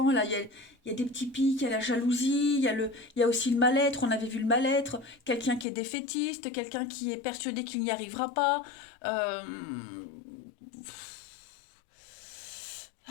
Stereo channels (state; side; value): drops out; right; at 5.7 s